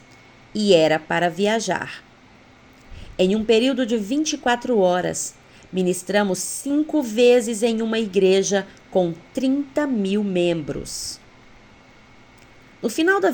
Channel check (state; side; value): identical; both; correlation 1.00